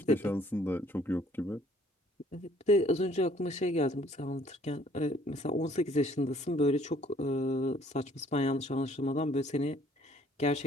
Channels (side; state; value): both; normal; correlation 0.60